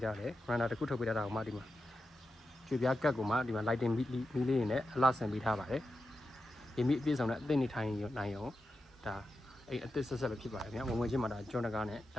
ားတယ်ဝရန်ဒါတစ်ခုထုတ်ပေးထားတာကိုမှဒီမှာကျွေပြားကတ်ကိုမှဒီမှာ lighting မီးလေးတွေနဲ့အလှဆင်ပေးထားပါတယ်ဒီမီးအပြည့်စုံနဲ့အသစ်နေထိုင်နိုင်အောင်ဒါအိမ်အသစ်ဆက်ဆက်ပဲဖြစ်ပါတယ်ဗျာဝင်ချင်းမှာဒါကျွန်းတကားနဲ့ဒ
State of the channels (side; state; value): both; normal; correlation 0.90